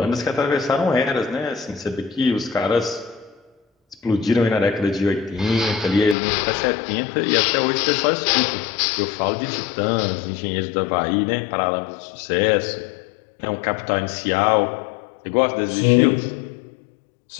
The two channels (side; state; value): right; drops out; at 6.2 s